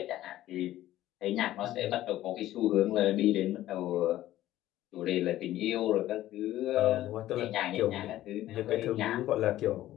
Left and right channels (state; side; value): quieter; right; 14.3 dB